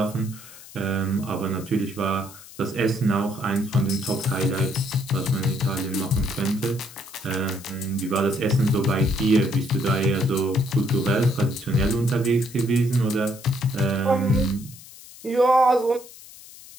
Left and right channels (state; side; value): noise; left; hiss, 18 dB below the sound